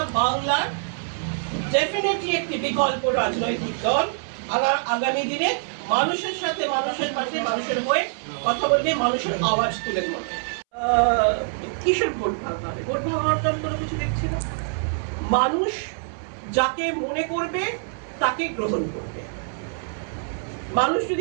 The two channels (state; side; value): silent; left; 62 dB below the other